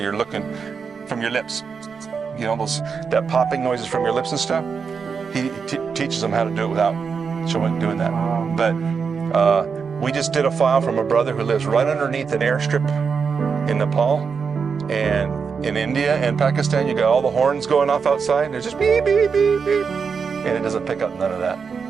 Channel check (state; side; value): quieter; left; 5.8 dB